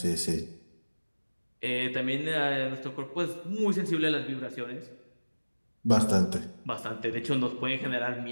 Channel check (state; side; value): inverted; both; correlation -1.00